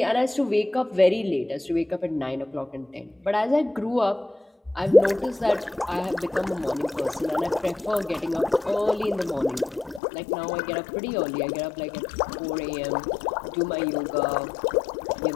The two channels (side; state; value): right; drops out; at 10.0 s